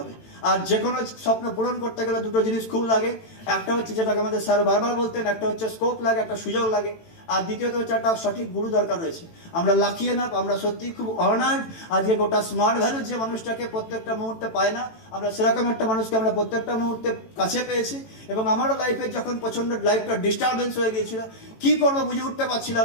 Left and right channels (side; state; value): right; late; 18 ms